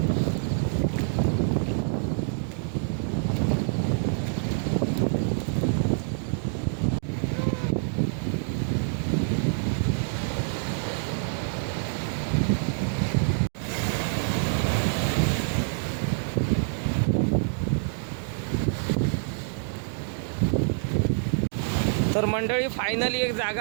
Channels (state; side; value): silent; left; digital silence